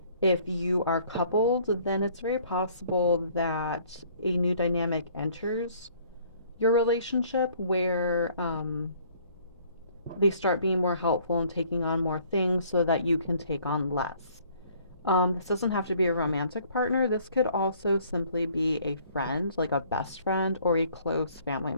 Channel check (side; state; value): both; inverted; correlation -0.58